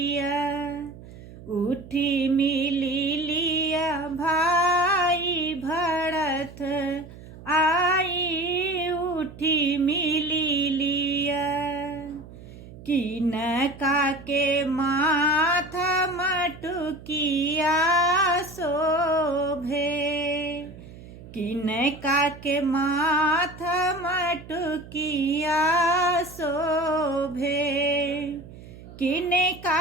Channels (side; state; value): right; noise; hum, 17 dB below the sound